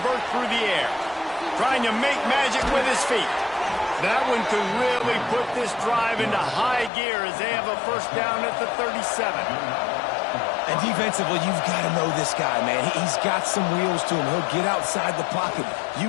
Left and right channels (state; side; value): drops out; right; at 6.9 s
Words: through the air. Trying to make magic with his feet. That one could really put this drive into high gear as they have a 1st down at the 37. And defensively, you've got to know this guy, man. He's got some wheels to him. He'll get outside the pocket.